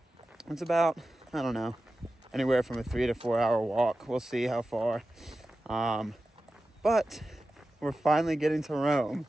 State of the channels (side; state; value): both; normal; correlation 0.93